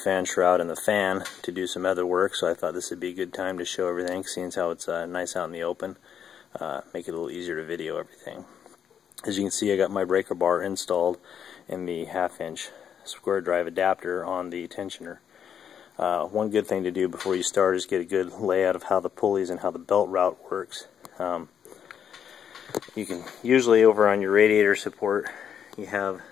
shroud and the fan to do some other work, so I thought this would be a good time to show everything, seeing as how it's nice out in the open. Make it a little easier to video everything. As you can see, I got my breaker bar installed in the 1/2 inch square drive adapter on the tensioner. One good thing to do before you start is get a good layout of how the pulleys and how the belt route works. You can usually, over on your radiator support, you have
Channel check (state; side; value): quieter; right; 8.4 dB